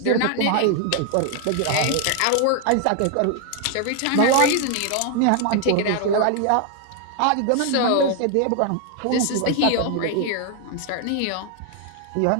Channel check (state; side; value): different; both; correlation 0.00